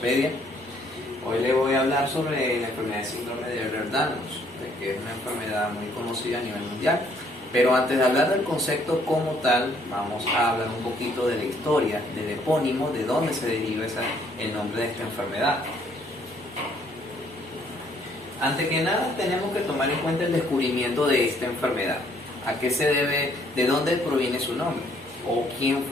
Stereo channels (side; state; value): both; normal; correlation 0.65